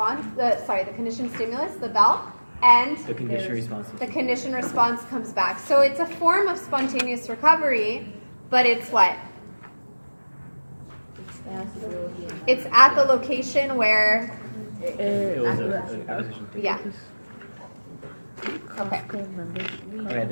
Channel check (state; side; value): inverted; both; correlation -1.00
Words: the conditioned stimulus, the bell, and The condition response. the conditioned response comes back. So it's a form of spontaneous recovery, but it's what? It's at the location where, It was a acquisition. yeah. Okay. Costco membership. Okay,